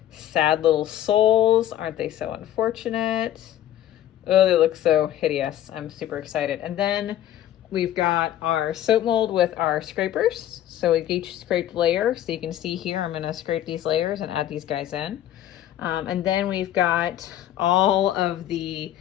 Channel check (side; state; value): right; quieter; 12.2 dB